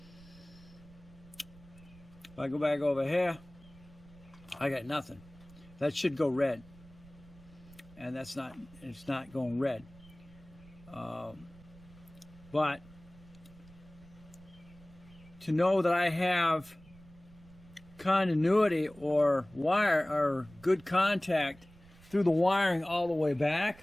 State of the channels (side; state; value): right; noise; rumble, 23 dB below the sound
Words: If I go back over here, I got nothing. That should go red, and it's not going red. But to know that I have continuity or wire or good contact through the wiring all the way back,